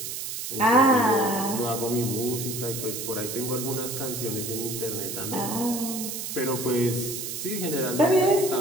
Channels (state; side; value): noise; right; hiss, 6 dB below the sound